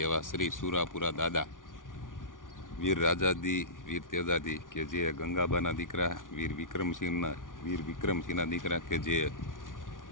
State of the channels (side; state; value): right; late; 0.88 ms